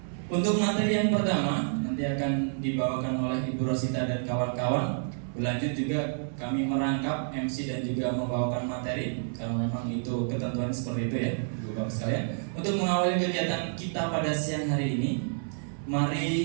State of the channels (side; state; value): left; silent; 58 dB below the other